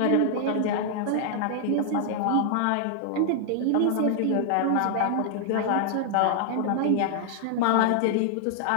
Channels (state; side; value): different; both; correlation -0.01